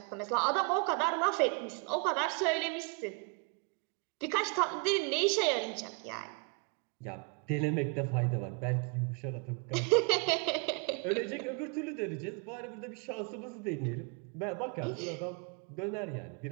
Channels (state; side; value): quieter; left; 31.9 dB